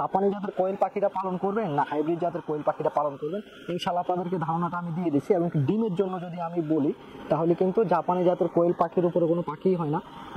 জাতের কোয়েল পাখিটা পালন করবেন না হাইব্রিড জাতের কোয়েল পাখিটা পালন করবেন। ইনশাল্লাহ আপনাদেরকে ধারণাটা আমি দিয়ে দিচ্ছি। এবং ডিমের জন্য যদি আমি বলি তাহলে কিন্তু জাপানি জাতের কোয়েল পাখির উপরে কোনো পাখিই হয় না।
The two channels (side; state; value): both; identical; correlation 1.00